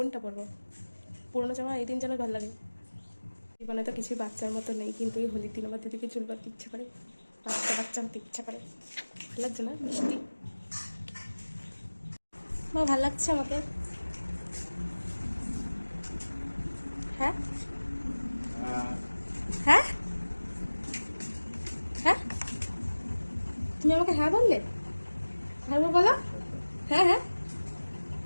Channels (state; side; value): inverted; both; correlation -1.00